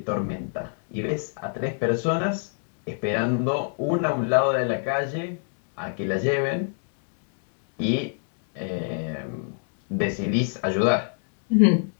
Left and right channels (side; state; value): right; silent; digital silence